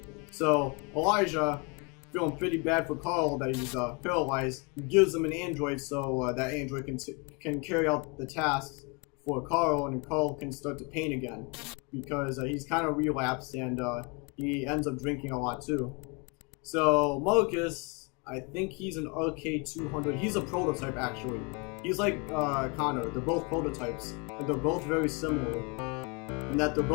So Elijah, feeling pretty bad for Carl that he's paralyzed, gives him an android so that android can carry out the tasks for Carl, and Carl can start to paint again because he's kind of relapsed and he ends up drinking a lot too. So Marcus, I think he's an RK200. He's a prototype actually. He's like Connor. They're both prototypes, and they're both very similar in that they're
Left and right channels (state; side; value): quieter; right; 32.0 dB